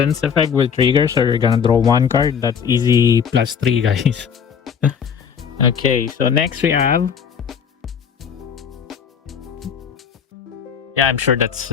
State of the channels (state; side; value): quieter; right; 7.2 dB